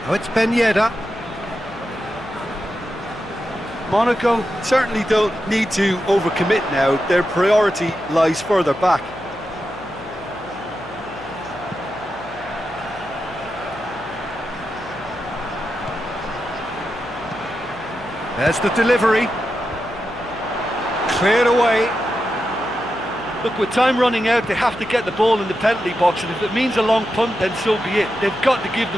Oh, it's Ben Yedder. Monaco certainly don't need to overcommit now. Their priority lies further back. There's the delivery. Cleared away. Look, with time running out, they have to get the ball in the penalty box, and if it means a long punt, then so be it. They've got to give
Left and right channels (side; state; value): left; noise; hum, 19 dB below the sound